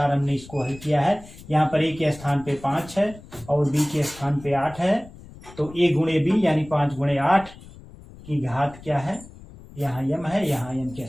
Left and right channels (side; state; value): left; noise; rumble, 19 dB below the sound